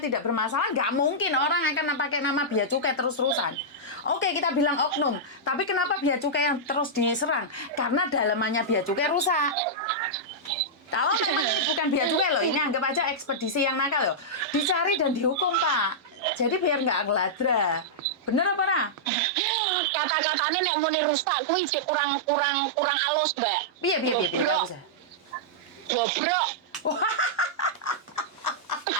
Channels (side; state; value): both; normal; correlation -0.10